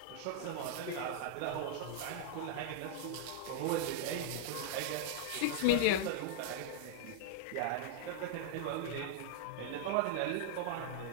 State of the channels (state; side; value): different; both; correlation -0.01